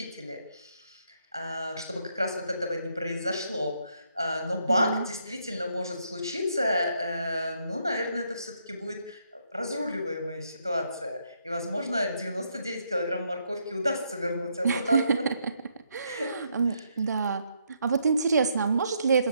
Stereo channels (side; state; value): both; inverted; correlation -0.75